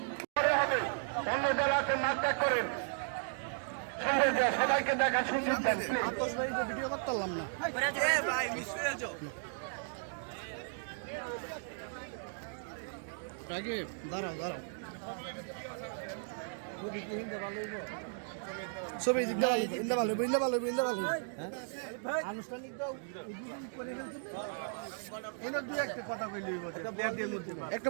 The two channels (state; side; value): silent; left; digital silence